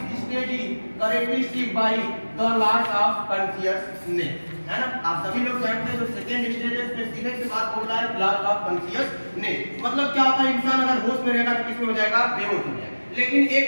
stage is characteristic by the loss of consciousness, है ना। आप सभी लोग जानते हैं जो सेकंड स्टेज है उसमें सीधे से बात बोल रहा है, लॉस ऑफ कॉन्शियसनेस। मतलब क्या होता है, इंसान अगर होश में रहेगा तो किस में हो जाएगा, बेहोश हो जाएगा। लेकिन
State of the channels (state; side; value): inverted; both; correlation -1.00